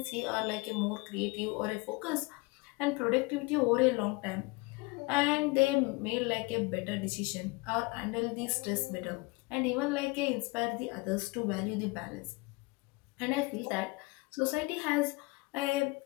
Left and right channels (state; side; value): quieter; right; 26.0 dB